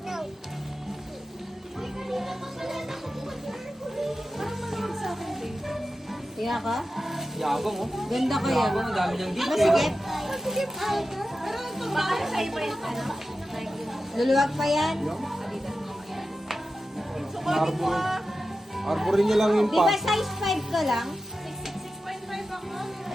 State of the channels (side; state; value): both; normal; correlation 0.92